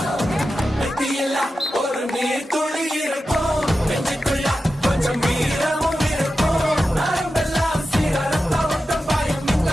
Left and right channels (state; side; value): normal; both; correlation 0.92